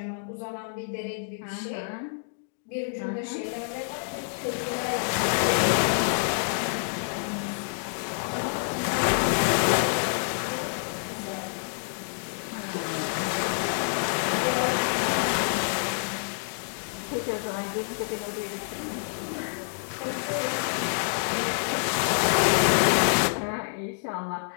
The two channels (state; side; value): silent; right; digital silence